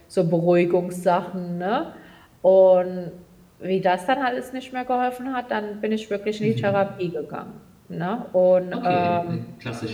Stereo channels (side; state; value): both; identical; correlation 1.00